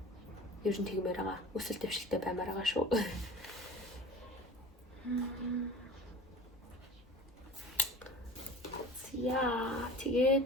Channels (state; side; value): normal; both; correlation 0.38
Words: Ер нь тэгмээр байгаа. Өсөл дэвшилтэй баймаар байгаа шүү. Яа, тэгээд